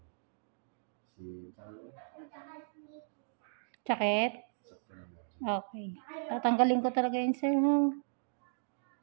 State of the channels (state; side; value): silent; left; digital silence